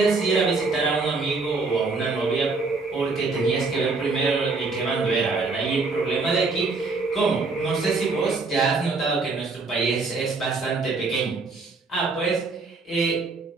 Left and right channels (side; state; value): left; quieter; 4.0 dB